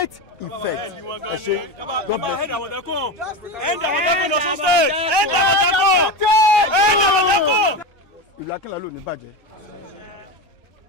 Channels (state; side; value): normal; both; correlation 0.21